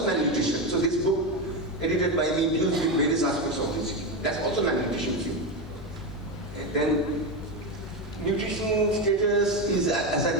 malnutrition. So this book, edited by me, deals with various aspects of obesity. That's also malnutrition too. And then, nutrition status is, as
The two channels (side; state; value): left; noise; hum, 19 dB below the sound